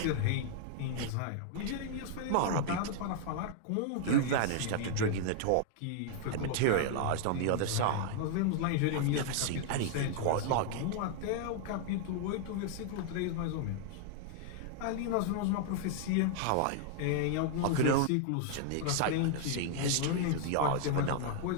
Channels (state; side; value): different; both; correlation -0.01